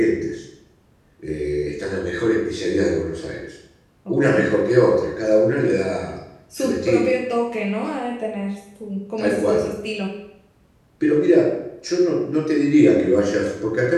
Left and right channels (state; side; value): identical; both; correlation 1.00